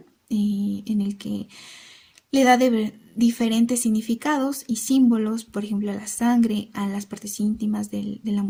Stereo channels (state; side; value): identical; both; correlation 1.00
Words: en el que le da diferentes significados y símbolos, por ejemplo, a la sangre, a las partes íntimas de la